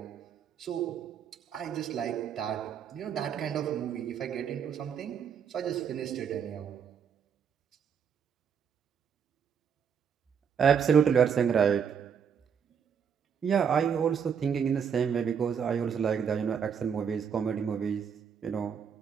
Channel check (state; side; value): quieter; left; 7.3 dB